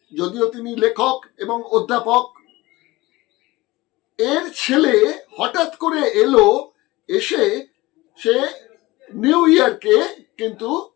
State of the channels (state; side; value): quieter; right; 20.1 dB